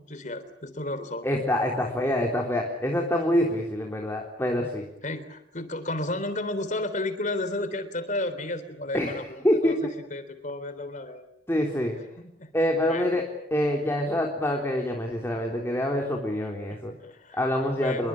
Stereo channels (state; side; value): normal; both; correlation 0.62